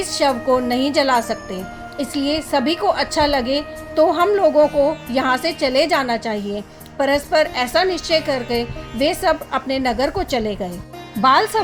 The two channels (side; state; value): both; identical; correlation 1.00